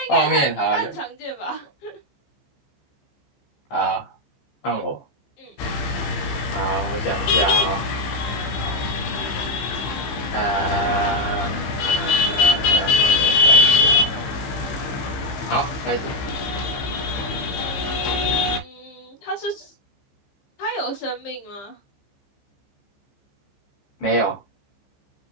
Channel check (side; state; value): right; late; 15 ms